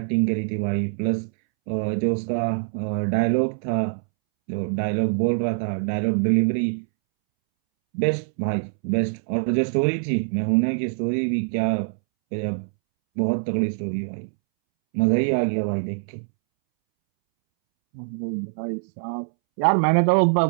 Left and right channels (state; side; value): silent; left; 63 dB below the other